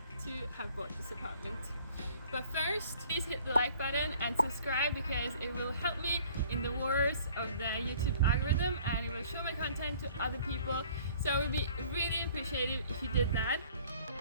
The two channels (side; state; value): both; inverted; correlation -0.54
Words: to have bought this apartment. But first, please hit the like button and subscribe because it will help me in the wars of the YouTube algorithm and it will show my content to other people. So it would be really appreciative if you did that.